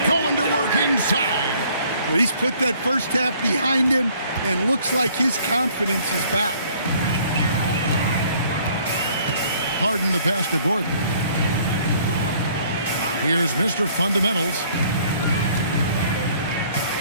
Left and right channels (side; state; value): both; inverted; correlation -0.59